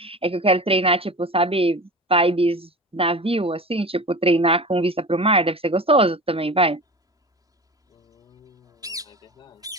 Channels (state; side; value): normal; both; correlation 0.33